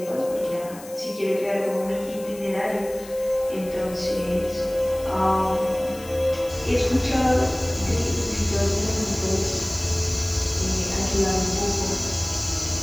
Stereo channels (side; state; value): left; noise; hiss, 18 dB below the sound